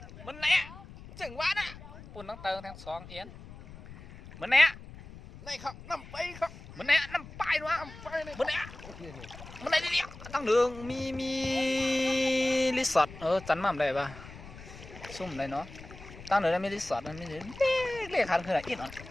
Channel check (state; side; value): noise; left; rumble, 16 dB below the sound